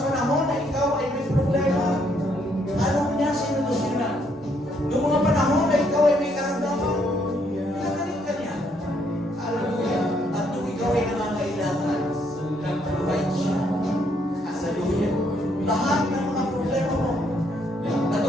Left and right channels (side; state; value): both; normal; correlation 0.71